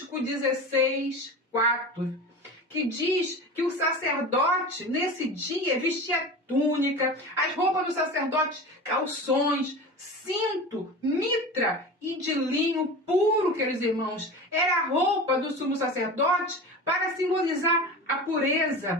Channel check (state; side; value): normal; both; correlation 0.31